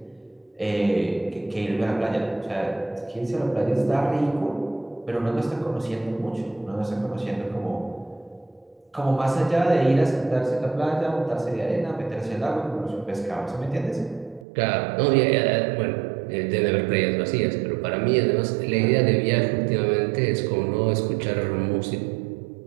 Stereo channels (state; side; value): drops out; left; at 14.5 s